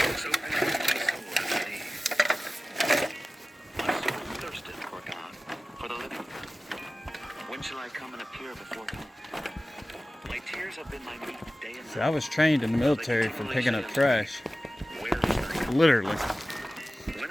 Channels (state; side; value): normal; both; correlation 0.96